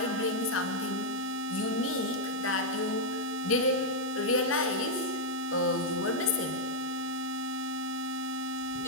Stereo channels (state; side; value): normal; both; correlation -0.04